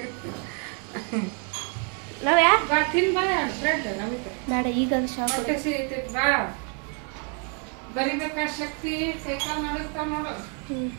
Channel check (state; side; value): quieter; left; 39.5 dB